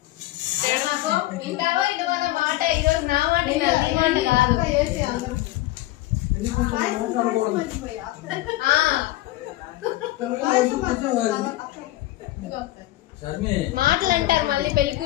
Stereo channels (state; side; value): quieter; right; 16.7 dB